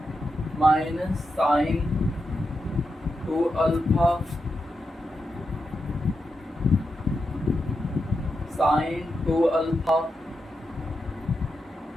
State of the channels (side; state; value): both; normal; correlation 0.87